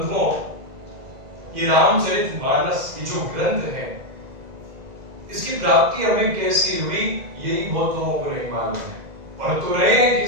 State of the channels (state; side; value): late; left; 1.9 ms